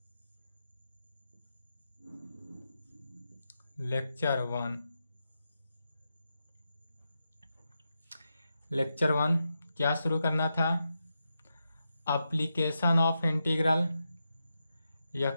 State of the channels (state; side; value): inverted; both; correlation -0.87